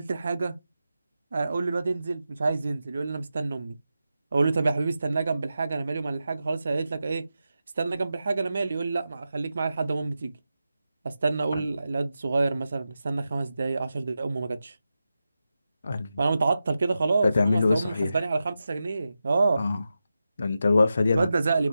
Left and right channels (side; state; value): both; inverted; correlation -0.90